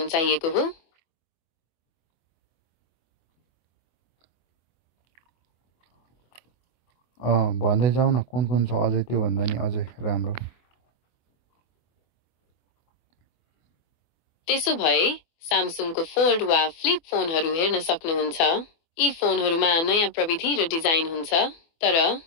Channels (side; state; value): right; late; 24 ms